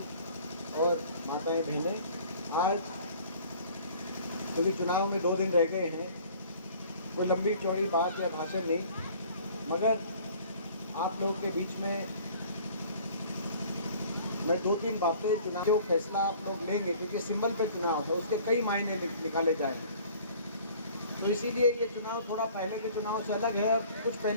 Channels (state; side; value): inverted; both; correlation -0.51